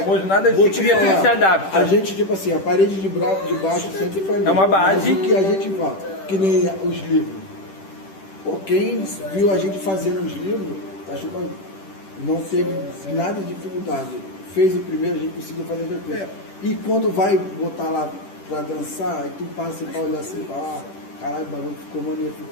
nada Vou de te cria falar, se adapta. a gente, tipo assim, a parede de baixo sempre foi a mesma. É uma base. Mas o que a gente fala, que nem os livros. Pô, quem viu a gente fazendo os livros, acho que não teve nada de dificuldade. Fez o primeiro, a gente conseguiu fazer depois. E quando vai botar lá pra dançar, aí tu passa pra olhar assim, caralho, o bagulho ficou maneiro,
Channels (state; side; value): late; right; 10 ms